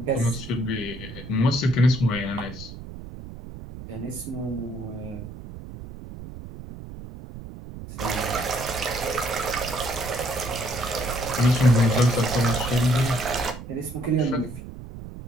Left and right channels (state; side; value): noise; right; rumble, 12 dB below the sound